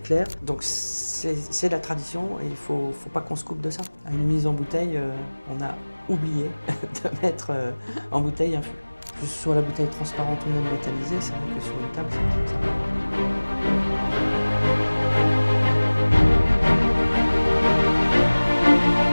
Donc c'est la tradition et il faut pas qu'on se coupe de ça. À une mise en bouteille, on a oublié de mettre en bouteille un fût. Que ce soit la bouteille transparente ou non métallisée, c'est vrai que sur une table, c'est comme ça.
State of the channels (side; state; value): both; inverted; correlation -1.00